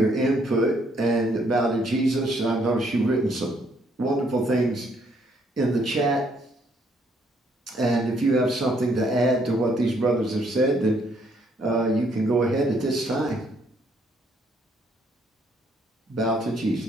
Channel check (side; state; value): both; normal; correlation 0.69